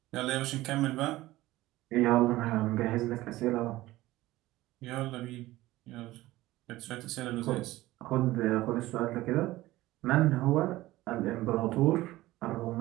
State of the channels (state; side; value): quieter; left; 17.3 dB